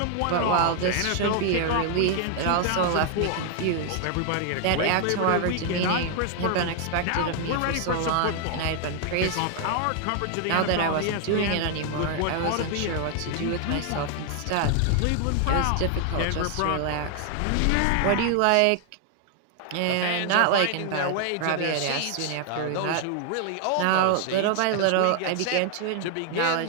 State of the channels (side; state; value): both; different; correlation 0.00